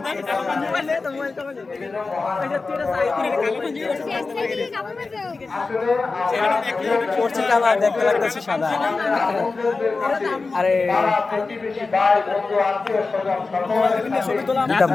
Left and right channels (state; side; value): quieter; right; 4.0 dB